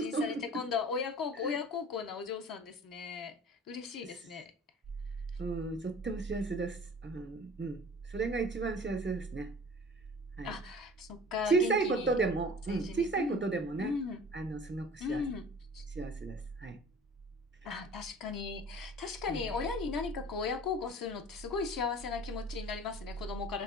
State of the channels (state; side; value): normal; both; correlation 0.44